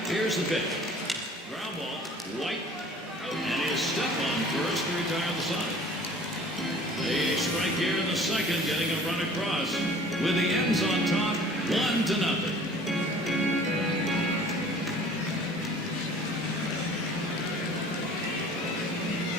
Here's the pitch. Ground ball. White. And he'll step on first to retire the side. A strike here in the second, getting a run across. With the ends on top, 1-0.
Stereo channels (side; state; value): both; normal; correlation 0.49